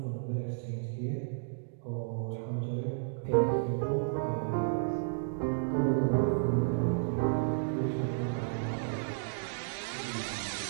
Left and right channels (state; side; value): silent; left; digital silence